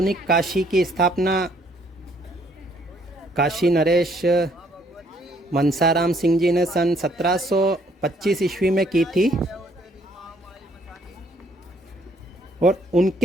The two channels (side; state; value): both; normal; correlation 0.65